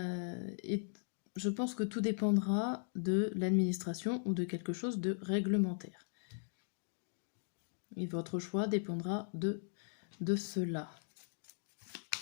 Je pense que tout dépendra de l'administration ou de quelque chose de réglementaire. Et votre choix dépendra de cela.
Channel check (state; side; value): silent; right; digital silence